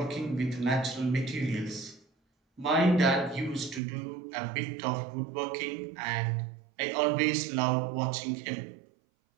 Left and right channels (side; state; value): left; drops out; at 3.8 s